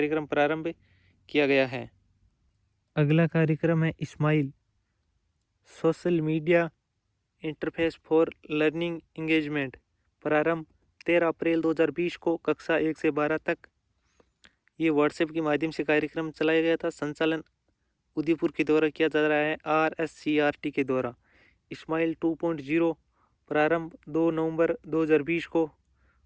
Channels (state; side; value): identical; both; correlation 1.00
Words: प्रारंभ किया गया है। अगला कार्यक्रम है SMILE Social Media Interface for Learning Engagement. प्रारंभ 13 अप्रैल 2020 को, कक्षा 1 से 12 तक। ये व्हाट्सएप के माध्यम से कार्यक्रम चलाया गया था। संचालन उदयपुर के द्वारा किया जा रहा है RSCRT के द्वारा। इस्माइल 2.0 प्रारंभ 2 नवंबर 2020 को,